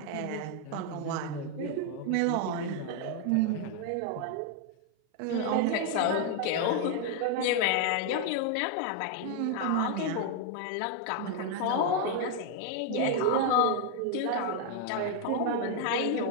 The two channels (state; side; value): different; both; correlation 0.01